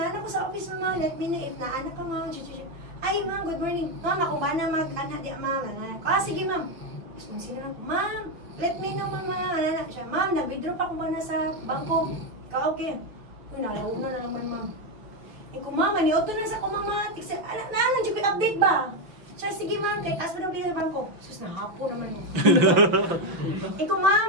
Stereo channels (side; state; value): left; late; 5.9 ms